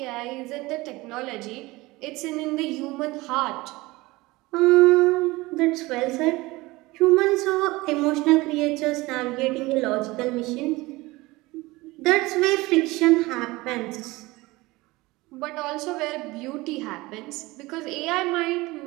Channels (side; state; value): left; quieter; 21.1 dB